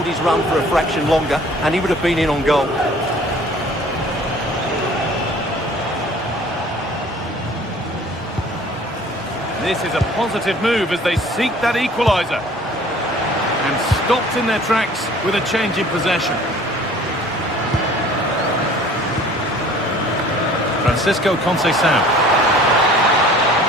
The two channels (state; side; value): normal; both; correlation 0.50